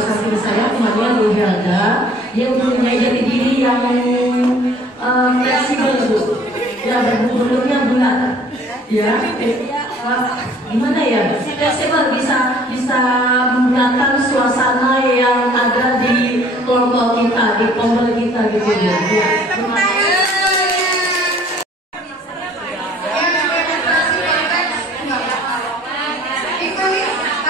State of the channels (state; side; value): normal; both; correlation 0.54